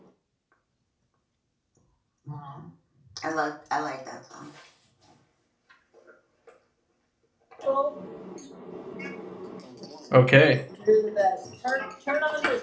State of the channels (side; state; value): both; identical; correlation 1.00